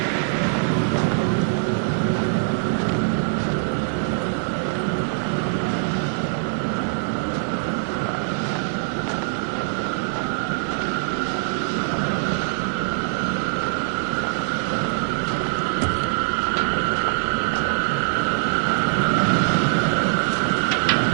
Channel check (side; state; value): left; silent; digital silence